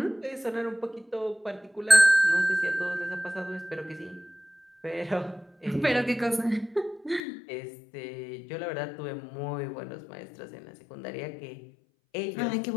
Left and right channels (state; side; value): drops out; right; at 7.2 s